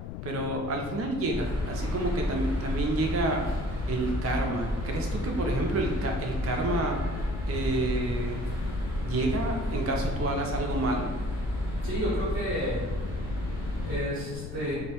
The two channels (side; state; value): left; noise; rumble, 8 dB below the sound